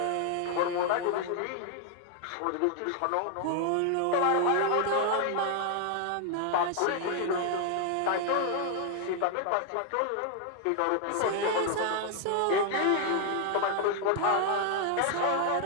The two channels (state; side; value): different; both; correlation 0.00